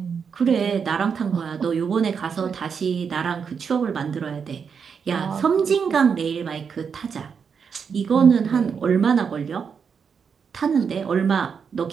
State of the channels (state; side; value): quieter; left; 6.4 dB